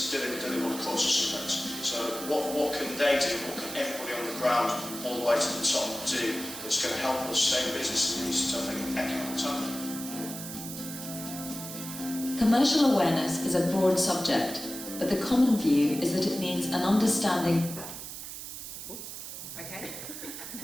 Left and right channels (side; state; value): right; noise; hiss, 9 dB below the sound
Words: do they want a course of sunbeds? So what can they do, what can everybody on the ground all the way to the top do that's going to help us stay in business in these tough economic times? Commercial awareness is a broad subject, but the common view is that it means an understanding. Okay.